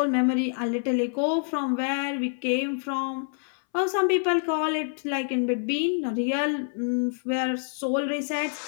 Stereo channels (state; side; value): silent; right; 60 dB below the other